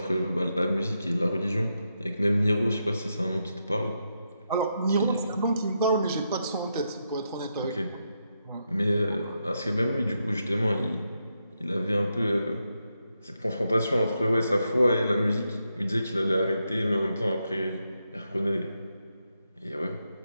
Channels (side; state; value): both; inverted; correlation -0.83